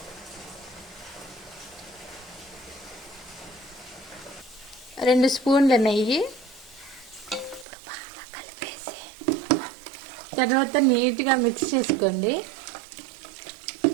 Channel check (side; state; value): left; drops out; at 7.7 s